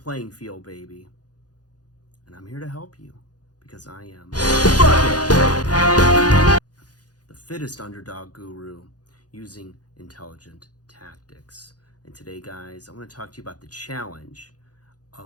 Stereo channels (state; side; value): late; right; 0.69 ms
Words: field, baby. And I'm here to help you because I am the fittest underdog guru using intelligent tactics. And today, guys, I want to talk to you about the challenge